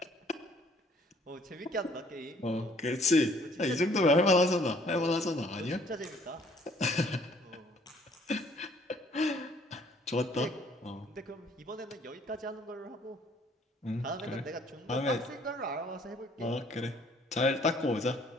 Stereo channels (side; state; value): both; normal; correlation 0.60